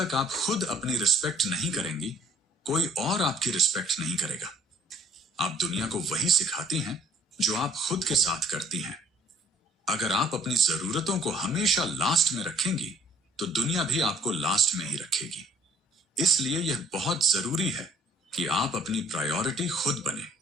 आप खुद अपनी रिस्पेक्ट नहीं करेंगी, कोई और आपकी रिस्पेक्ट नहीं करेगा। आप दुनिया को वही सिखाती हैं जो आप खुद के साथ करती हैं। अगर आप अपनी जरूरतों को हमेशा लास्ट में रखेंगी, तो दुनिया भी आपको लास्ट में ही रखेगी। इसलिए यह बहुत जरूरी है कि आप अपनी प्रायोरिटी खुद बने।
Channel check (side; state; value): both; normal; correlation 0.57